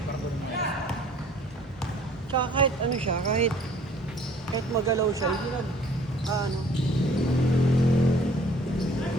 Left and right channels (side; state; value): both; normal; correlation 0.55